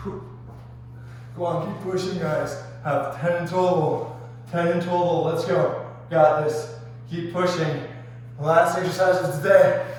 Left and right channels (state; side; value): identical; both; correlation 1.00